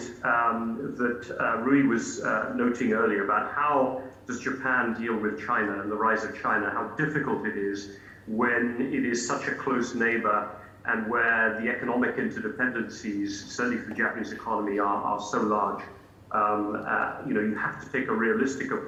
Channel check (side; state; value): both; identical; correlation 1.00